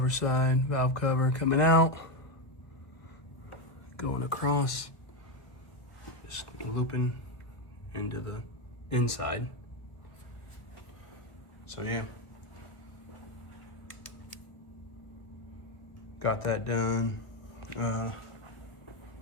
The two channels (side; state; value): right; late; 1.3 ms